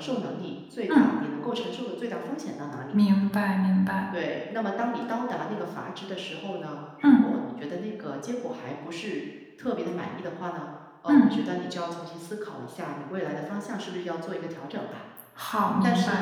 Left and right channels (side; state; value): both; identical; correlation 1.00